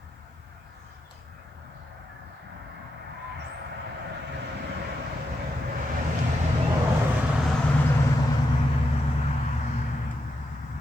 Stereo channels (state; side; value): normal; both; correlation 0.85